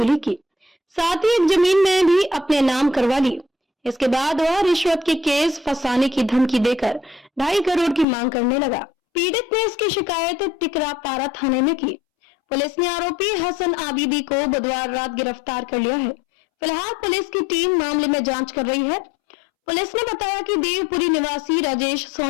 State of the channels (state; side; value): drops out; right; at 8.1 s